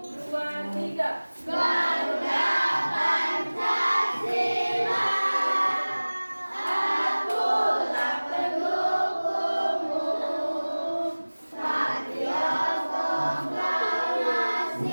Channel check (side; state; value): both; inverted; correlation -1.00